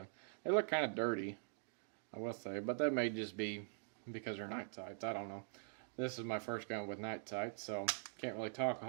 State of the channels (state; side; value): silent; left; digital silence